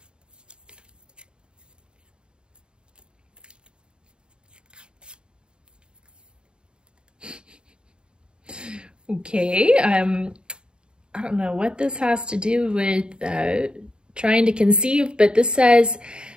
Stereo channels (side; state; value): left; late; 0.051 ms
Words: Okay, I don't know what this has to do with trying to conceive, but this says,